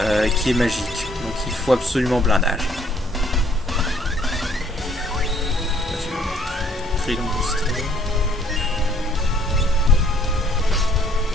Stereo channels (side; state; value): both; normal; correlation 0.62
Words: qui est magique. Donc il faut absolument blindage. Trilon booster.